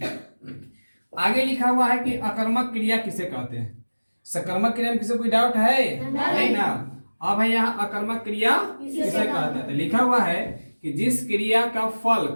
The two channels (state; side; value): inverted; both; correlation -1.00